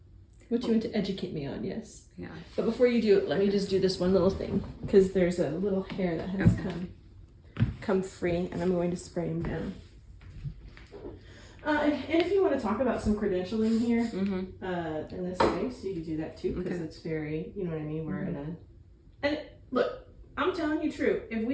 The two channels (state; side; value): identical; both; correlation 1.00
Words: What do you want to educate me on? Yes. Yeah. But before you do it, let me just do this one little thing, because there's a little hair that has come free, and I'm going to spray him down. And if you want to talk about some credentialing here, in this space, you can do that too, because it's very, you know what I mean, we're in a, and look, I'm telling you true, if